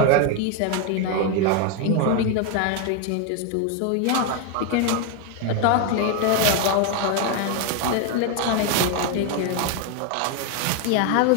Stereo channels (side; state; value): both; different; correlation 0.01